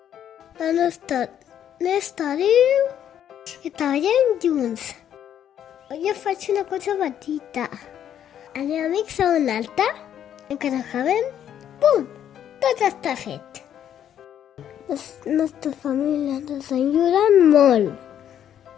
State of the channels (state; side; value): quieter; right; 10.0 dB